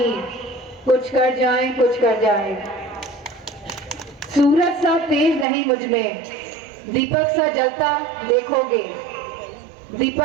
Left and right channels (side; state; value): left; drops out; at 5.5 s